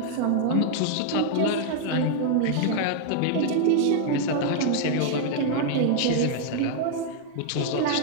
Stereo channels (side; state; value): both; different; correlation -0.01